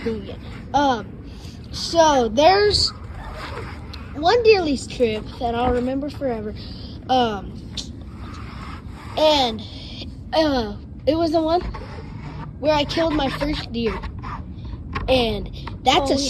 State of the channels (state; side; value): identical; both; correlation 1.00